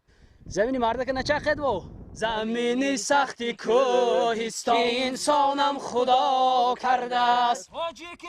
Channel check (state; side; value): identical; both; correlation 1.00